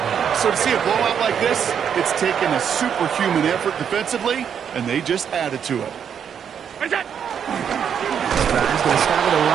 So to see a blowout like this, it's taken a superhuman effort defensively, and they just added to it. This drive's going to start with a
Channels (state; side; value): quieter; left; 8.0 dB